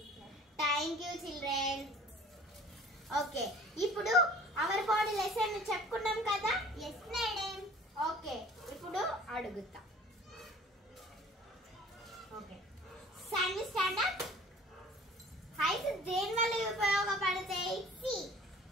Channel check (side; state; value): both; normal; correlation 0.48